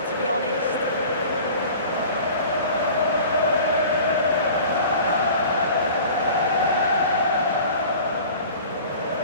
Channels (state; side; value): inverted; both; correlation -0.43